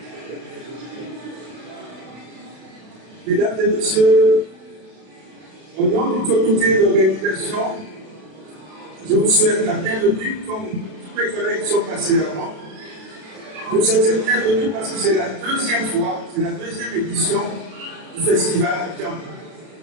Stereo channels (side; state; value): left; late; 32 ms